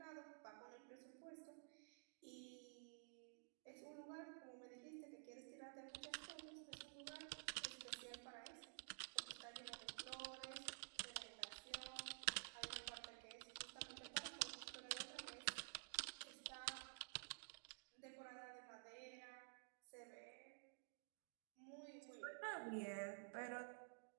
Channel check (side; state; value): left; silent; digital silence